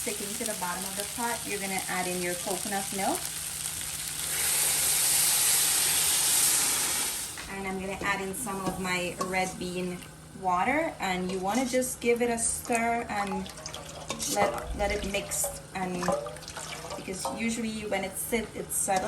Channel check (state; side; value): identical; both; correlation 1.00